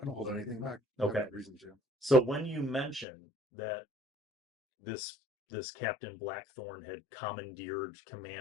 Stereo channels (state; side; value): drops out; right; at 3.1 s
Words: I don't hold anything back. Okay. I have no reason to. So when you mention that this Captain Blackthorn had commandeered